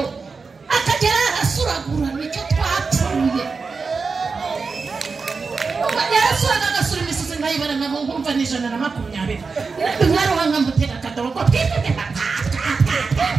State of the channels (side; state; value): left; quieter; 4.7 dB